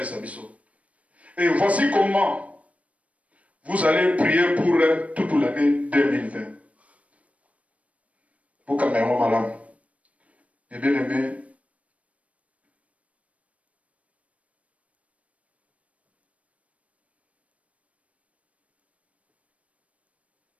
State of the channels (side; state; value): left; late; 0.066 ms